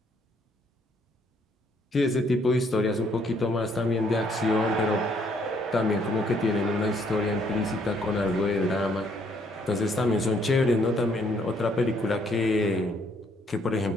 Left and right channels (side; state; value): both; normal; correlation 0.68